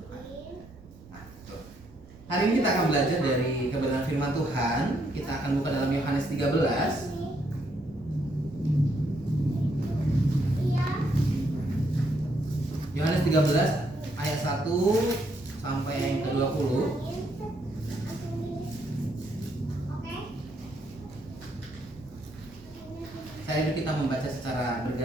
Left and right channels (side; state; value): right; noise; rumble, 22 dB below the sound